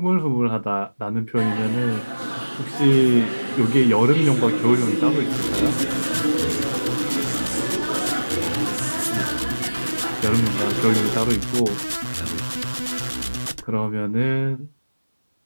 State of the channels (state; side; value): inverted; both; correlation -1.00